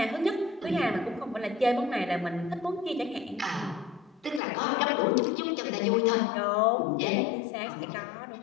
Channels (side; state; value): right; drops out; at 4.4 s